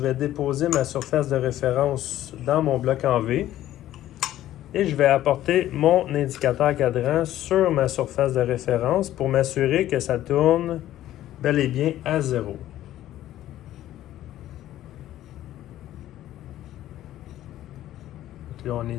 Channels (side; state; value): right; quieter; 13.3 dB